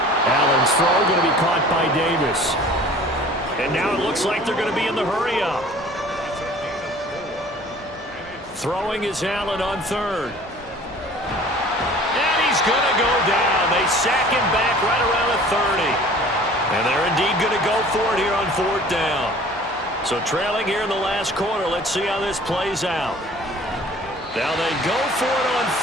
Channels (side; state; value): both; normal; correlation 0.48